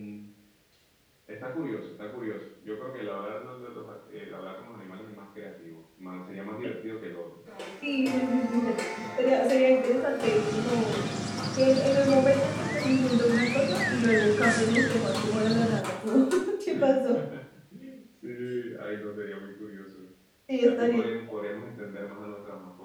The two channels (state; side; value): identical; both; correlation 1.00